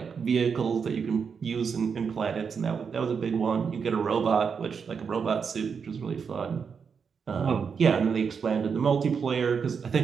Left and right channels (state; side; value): quieter; left; 6.2 dB